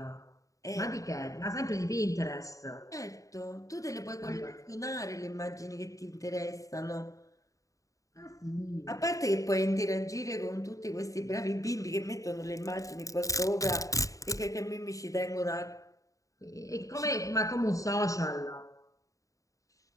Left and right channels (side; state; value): right; late; 0.16 ms